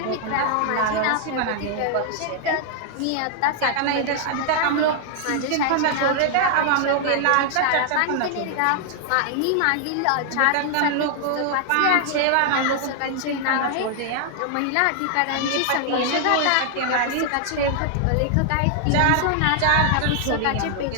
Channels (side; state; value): both; different; correlation 0.00